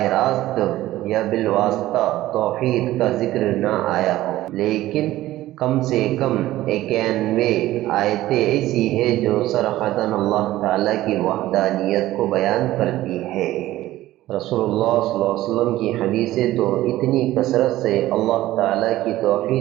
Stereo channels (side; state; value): left; quieter; 15.5 dB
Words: راست یا بالواسطہ توحید کا ذکر نہ آیا ہو، لیکن کم سے کم 91 آیتیں ایسی ہیں جو صراحتاً اللہ تعالیٰ کی وحدانیت کو بیان کرتی ہے۔ رسول اللہ صلی اللہ علیہ وسلم کی حدیثیں تو اتنی کثرت سے اللہ تعالیٰ کی